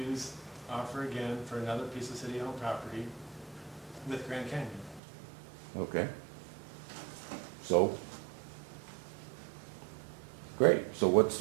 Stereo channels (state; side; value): drops out; left; at 5.0 s